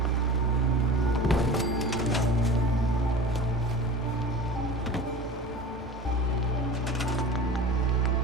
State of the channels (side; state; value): both; normal; correlation 0.37